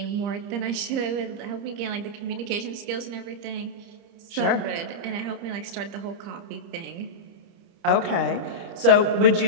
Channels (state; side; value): late; left; 30 ms